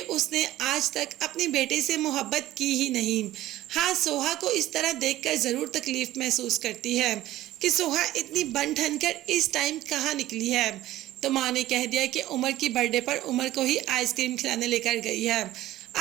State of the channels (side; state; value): left; quieter; 15.1 dB